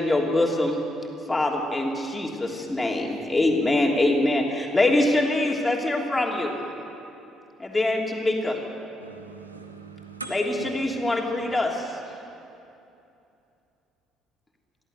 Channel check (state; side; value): normal; both; correlation 0.85